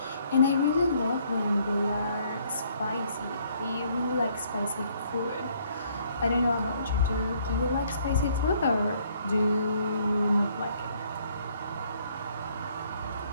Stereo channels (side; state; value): both; inverted; correlation -0.65